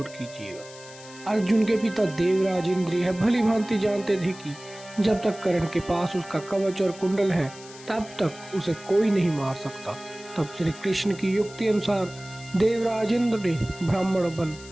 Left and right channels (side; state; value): left; noise; hiss, 18 dB below the sound